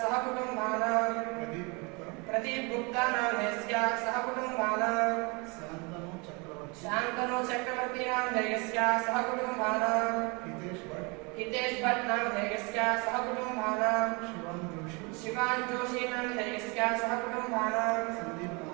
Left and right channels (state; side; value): quieter; left; 29.4 dB